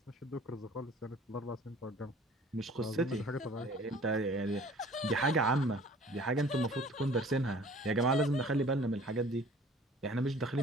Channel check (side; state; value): both; normal; correlation 0.50